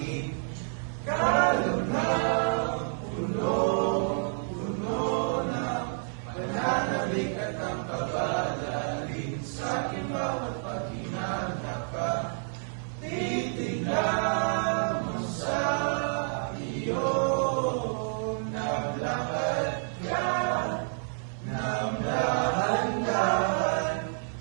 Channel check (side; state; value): left; silent; 58 dB below the other